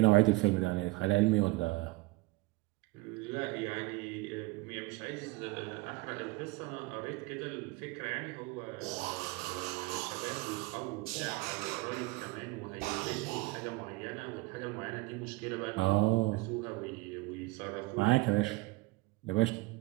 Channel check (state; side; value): quieter; left; 22.5 dB